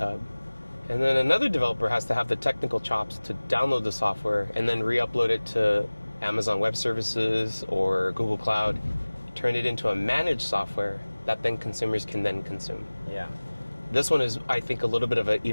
and then another developer has to have the technical chops to download the software and then re-upload it to Amazon Web Services or Google Cloud, turn it into a managed software that then consumers can then consume. Yeah. This one is, I think, a little bit of an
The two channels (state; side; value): inverted; both; correlation -1.00